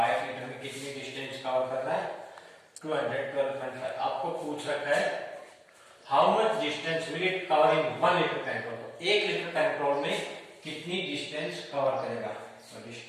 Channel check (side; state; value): both; identical; correlation 1.00